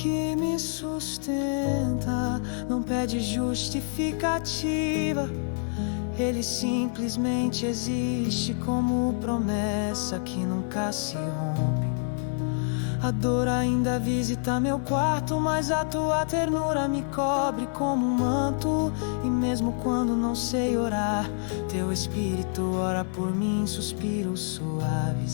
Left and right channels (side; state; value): right; silent; 60 dB below the other